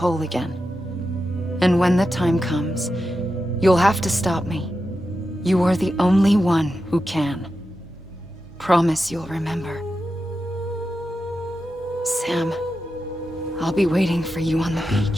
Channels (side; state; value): both; normal; correlation 0.90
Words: again. And when the time comes, you'll have to stop me. You are the only one who can. Promise you'll remember. Sam, I'll be waiting for you on the